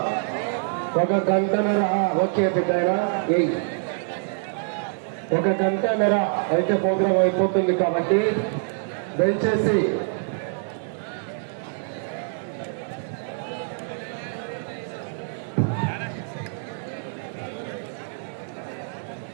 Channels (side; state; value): left; silent; 56 dB below the other